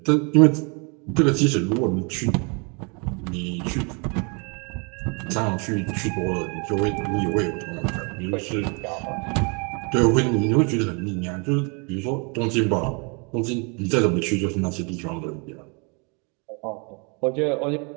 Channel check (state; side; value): quieter; left; 33.3 dB